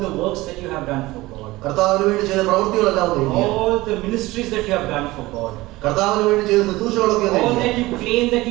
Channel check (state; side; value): quieter; left; 19.4 dB